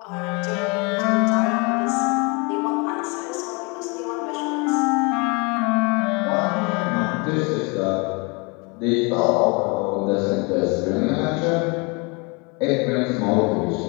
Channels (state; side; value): quieter; right; 29.6 dB